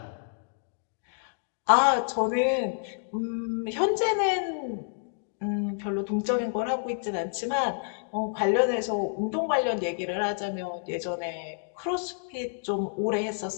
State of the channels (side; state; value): right; silent; digital silence